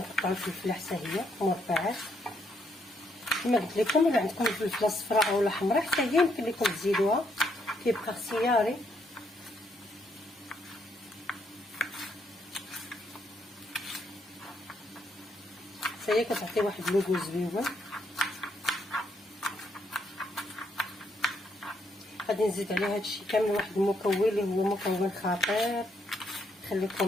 الفلفله حتى هي مربعات. كما قلت لكم الا عندكم الفلفله الصفراء اولا حمراء حتى هي يمكن لكم تزيدوها، كيبقى اختياري. حتى هي كتعطي واحد اللوغو زويون. غادي نزيد عليها هادشي كامل واحد المكون اللي هو مكون خطير.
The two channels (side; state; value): both; normal; correlation 0.74